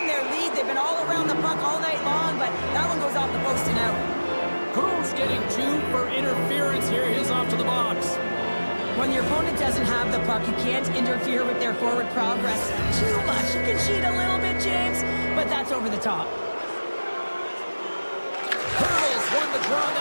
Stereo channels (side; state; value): both; inverted; correlation -1.00